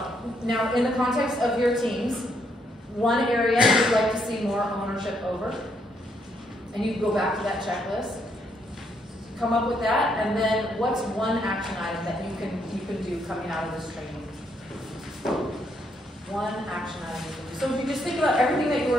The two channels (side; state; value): both; normal; correlation 0.74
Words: Now, in the context of your teams, one area you'd like to see more ownership over, and you can go back to that checklist, come up with that, and then what's one action item that you can do coming out of this training? One action item. So if you just think about everything that you